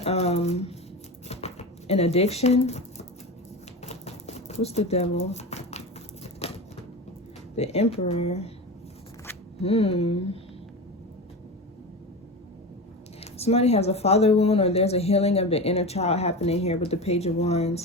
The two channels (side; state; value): both; normal; correlation 0.26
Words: an addiction. What's the Devil? The Emperor. Somebody has a father wound, or there's a healing of the inner child happening here with the Page of